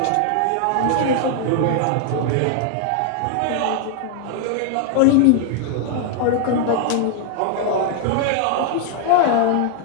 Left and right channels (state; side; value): different; both; correlation 0.00